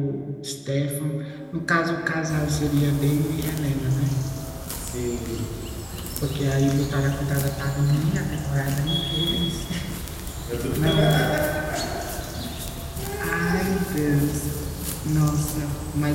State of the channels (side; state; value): both; identical; correlation 1.00